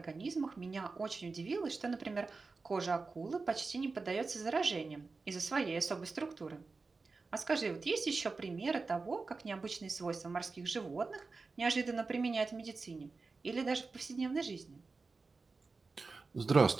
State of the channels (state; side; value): quieter; left; 4.1 dB